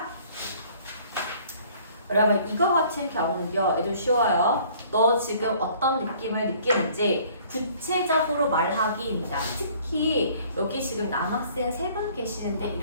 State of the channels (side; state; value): both; inverted; correlation -0.55